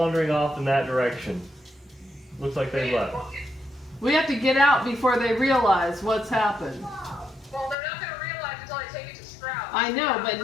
off in that direction. Looks like they left. We have to get out before they realize what's happened. Well, they're not gonna realize until I take it to Strahd. I know, but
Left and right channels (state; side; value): drops out; right; at 7.8 s